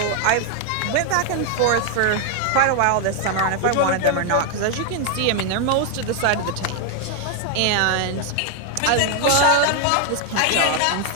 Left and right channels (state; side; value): different; both; correlation 0.00